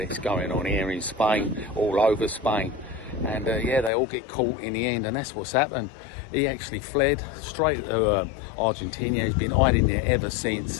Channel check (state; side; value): drops out; right; at 3.9 s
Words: this going on here in Spain, all over Spain. And yeah, they all get caught in the end, and that's what's happened. He actually fled straight to Argentina. He's been hiding there ever